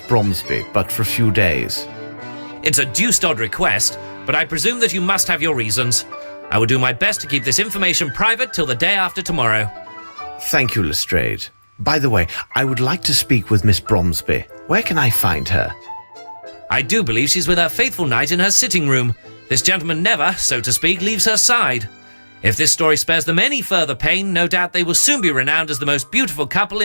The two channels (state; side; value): inverted; both; correlation -1.00